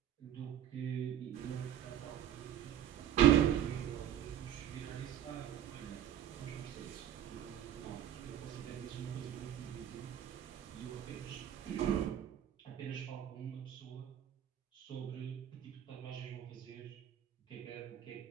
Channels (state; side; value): quieter; left; 10.6 dB